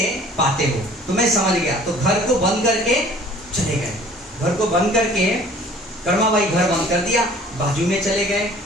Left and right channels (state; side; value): normal; both; correlation 0.51